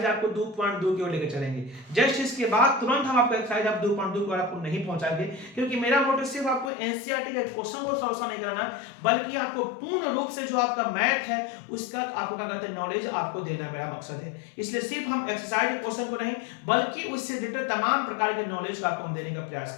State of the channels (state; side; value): drops out; right; at 6.7 s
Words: आपको 2.2 की ओर लेकर चलेंगे। जस्ट इसके बाद तुरंत हम आपको एक्सरसाइज आप 2.2 को आपको नहीं पहुंचाएंगे, क्योंकि मेरा मोटिव सिर्फ आपको एनसीईआरटी के क्वेश्चन को सॉल्व नहीं कराना, बल्कि आपको पूर्ण रूप से जो आपका मैथ है उसका आपको क्या कहते हैं नॉलेज आपको देना मेरा मकसद है। इसलिए सिर्फ हम एक्सरसाइज के क्वेश्चन को नहीं बल्कि उससे रिलेटेड तमाम प्रकार के नॉलेज को आपको हम देने का प्रयास